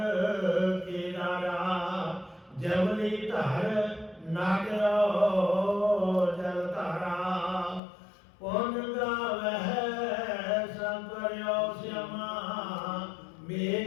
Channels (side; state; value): right; drops out; at 7.8 s